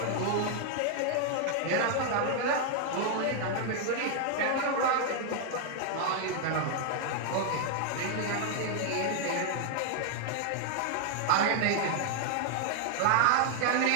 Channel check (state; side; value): different; both; correlation 0.00